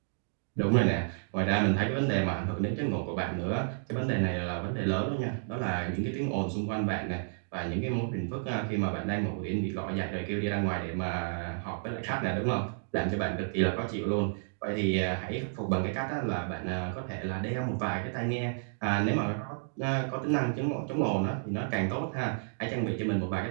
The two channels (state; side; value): silent; left; digital silence